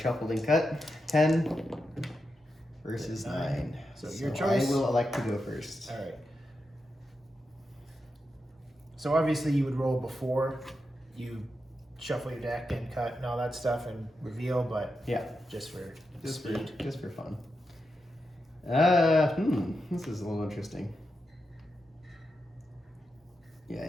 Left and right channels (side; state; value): both; normal; correlation 0.87